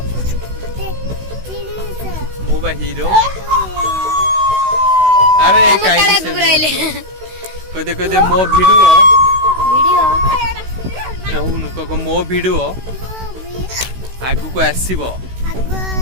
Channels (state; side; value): late; left; 16 ms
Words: मो बा हीरो अरे काई कहते कहते मो वीडियो कहूनु कह मो वीडियो आगु को आसीबो